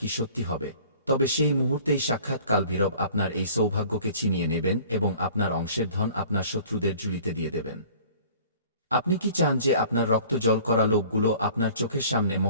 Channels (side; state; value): both; inverted; correlation -0.48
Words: কি সত্যি হবে, তবে সেই মুহূর্তেই সাক্ষাৎ কালভৈরব আপনার এই সৌভাগ্যকে ছিনিয়ে নেবেন এবং আপনার অংশের ধন আপনার শত্রুদের ঝুলিতে দিয়ে দেবেন। আপনি কি চান যে আপনার রক্ত জল করা লোকগুলো আপনার চোখের সামনে